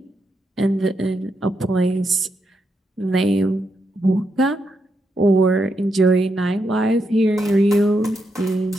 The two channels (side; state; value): both; normal; correlation 0.82